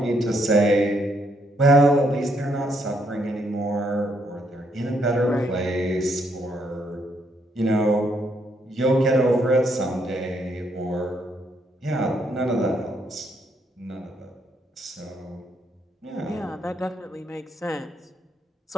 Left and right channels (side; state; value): both; normal; correlation 0.73